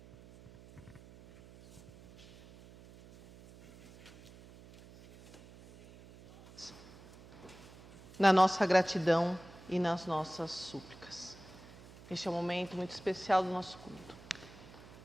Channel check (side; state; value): right; noise; hum, 20 dB below the sound